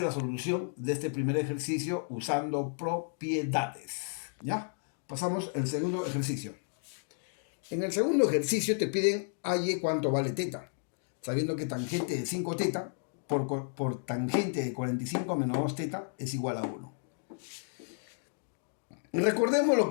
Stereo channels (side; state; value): right; silent; 56 dB below the other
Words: la solución de este primer ejercicio usando propiedades. ¿Ya? Pasamos al segundo ejercicio. En el segundo ejercicio te piden halle cuánto vale teta. Sabiendo que tangente de 5 teta por tangente de 45 menos 2 teta es igual a 1. Recordemos